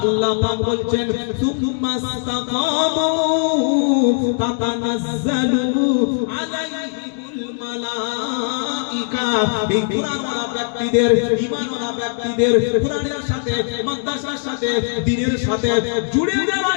আল্লাহ পাক বলছেন সুম্মা ইসতাকামু তাতানাজ্জালু আলাইহিমুল মালায়েকা। এই কোরআনওয়ালা ব্যক্তিদের, ঈমানওয়ালা ব্যক্তিদের, কোরআনের সাথে, মাদ্রাসার সাথে, দ্বীনের সাথে জুড়ে যারা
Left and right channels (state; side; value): silent; right; 56 dB below the other